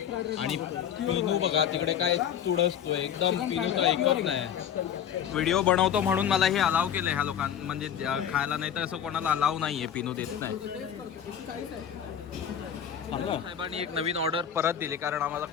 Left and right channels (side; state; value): right; quieter; 9.1 dB